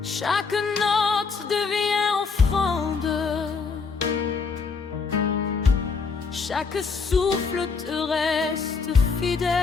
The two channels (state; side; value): quieter; right; 5.0 dB